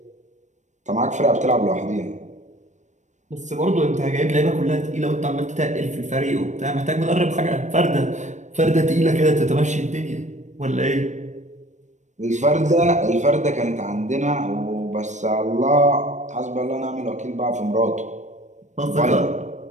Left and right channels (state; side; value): late; left; 0.35 ms